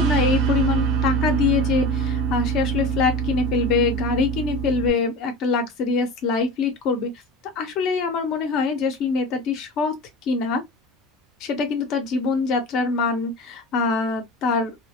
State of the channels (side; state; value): both; normal; correlation 0.32